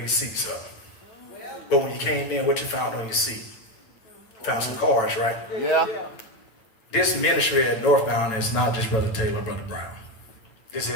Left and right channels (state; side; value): late; right; 9.0 ms